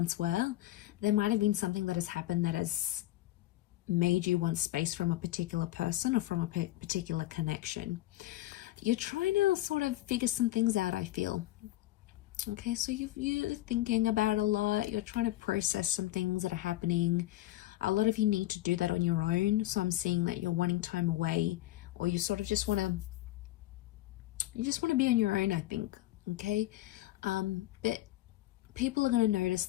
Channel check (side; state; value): right; quieter; 15.9 dB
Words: were. There might have been something that has happened that has made you want space from a particular person or from a particular connection. You're trying to sort of figure some things out, I feel. Okay, so you're thinking about a lot. You're trying to process some things that are happening. A lot of you need to do that on your own. So I'm seeing that you're wanting time away, or you sort of just want to be on your own, I think. Okay, but people are going to notice